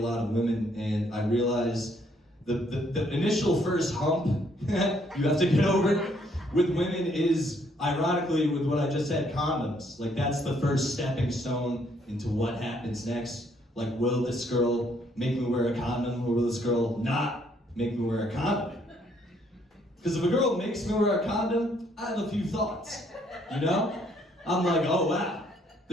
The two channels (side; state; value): both; normal; correlation 0.68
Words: of women, and I realize the initial first hump you have to get over with women is, ironically, with what I just said, condoms. Like, that's the first stepping stone into what happens next. Like, will this girl make me wear a condom, or will this girl not make me wear a condom? Because if a girl makes me wear a condom, I have a few thoughts, you know? I'm like, oh wow,